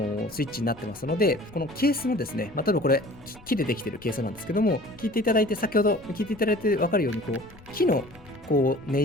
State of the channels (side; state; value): left; noise; rumble, 23 dB below the sound